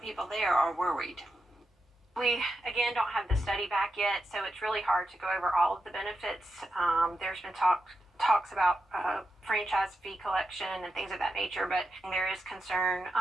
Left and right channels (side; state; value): both; normal; correlation 0.87